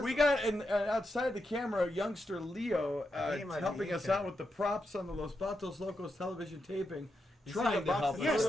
We got outside the camera, youngster Leo He might be helping us eating. out with the props on the Los Batos Locos television taping, You see trying the to box help of us. Yes,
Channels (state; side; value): normal; both; correlation 0.85